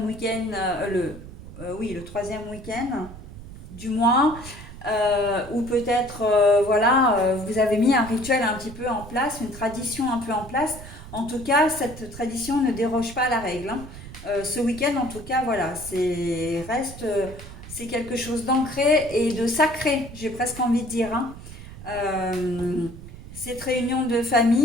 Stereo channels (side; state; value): right; noise; rumble, 14 dB below the sound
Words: week-end, oui, le troisième week-end du mois, ou peut-être, voilà, vous avez mis un rituel un petit peu en place, une tradition un peu en place. En tout cas, cette tradition ne déroge pas à la règle, hein. Ce week-end, en tout cas, voilà, c'est quelque chose d'ancré et de sacré, j'ai presque envie de dire, hein. Cette réunion de